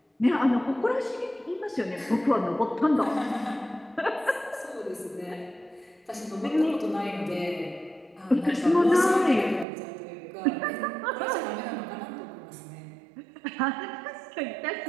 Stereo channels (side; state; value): left; drops out; at 9.7 s